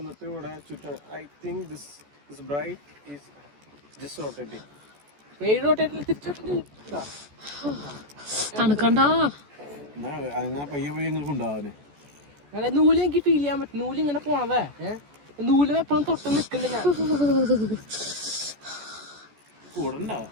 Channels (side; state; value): left; late; 14 ms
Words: ഇവിടെ ചുറ്റും I think this bright is just rotating. പേര് റൊട്ടേറ്റിൽ തിരിച്ചിട്ടുണ്ട്. തണുക്കണ്ട അങ്ങനെ പയ്യെ പയ്യെ നിങ്ങൾക്ക് ഉണ്ടാവാന് അങ്ങനെ നൂല് എനിക്ക് ഫീൽ ചെയ്യാൻ പറ്റും. നൂല് ഇങ്ങനെ പോണതേ നൂല് എപ്പോഴും തൊട്ട് നിക്കണ്ട ഞാൻ കൂടണ്ട